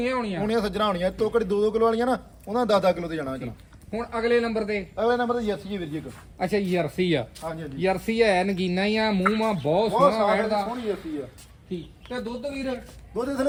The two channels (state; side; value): identical; both; correlation 1.00